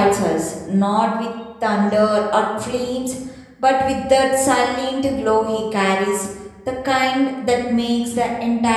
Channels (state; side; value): identical; both; correlation 1.00